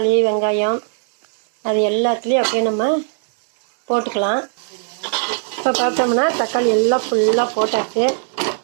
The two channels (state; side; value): silent; left; digital silence